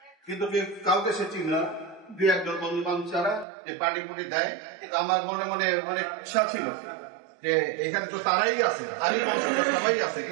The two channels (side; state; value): left; drops out; at 3.5 s